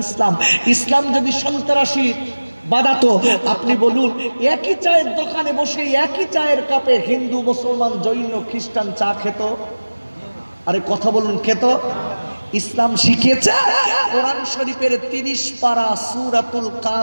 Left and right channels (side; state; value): both; inverted; correlation -1.00